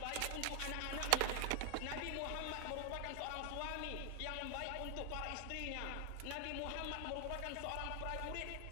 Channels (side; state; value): both; different; correlation 0.00